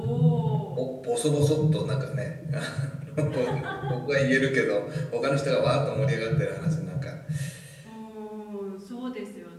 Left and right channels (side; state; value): both; identical; correlation 1.00